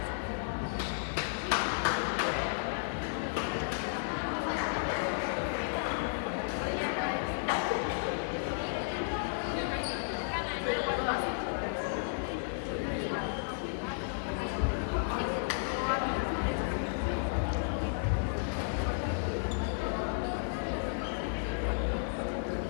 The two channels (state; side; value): silent; right; 56 dB below the other